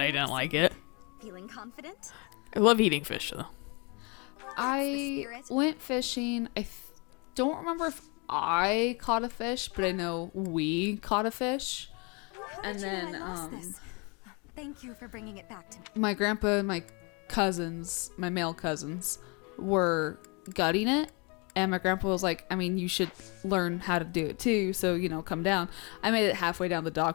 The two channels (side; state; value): right; quieter; 31.6 dB